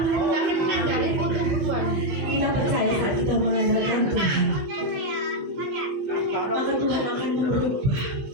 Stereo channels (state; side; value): late; left; 15 ms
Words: menang dari kutuk Tuhan. Kita percaya saat kita mengandalkan Tuhan, maka Tuhan akan merubah